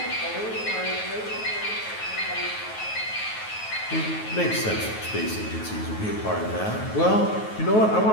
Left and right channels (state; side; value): late; right; 9.3 ms